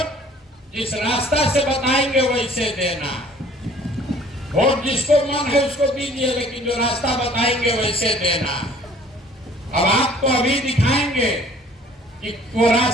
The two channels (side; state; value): both; normal; correlation 0.54